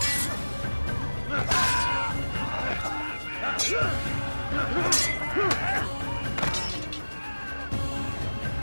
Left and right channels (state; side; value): inverted; both; correlation -1.00